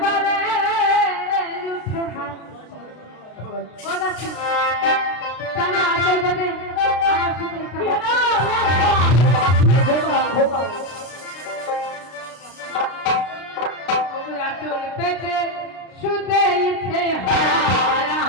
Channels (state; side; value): late; right; 33 ms